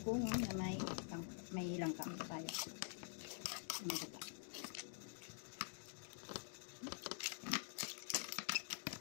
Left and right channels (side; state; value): right; silent; digital silence